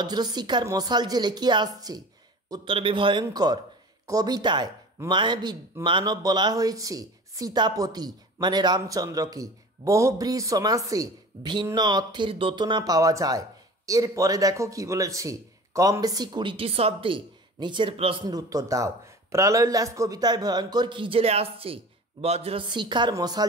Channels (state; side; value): normal; both; correlation 0.39